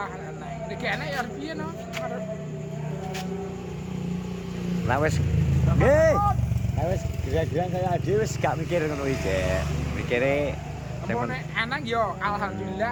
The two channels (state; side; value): identical; both; correlation 1.00